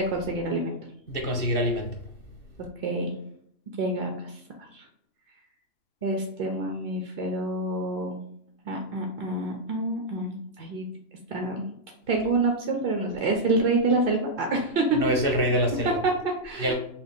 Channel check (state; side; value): late; right; 2.7 ms